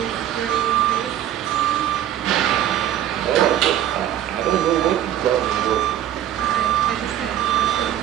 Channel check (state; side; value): quieter; left; 11.5 dB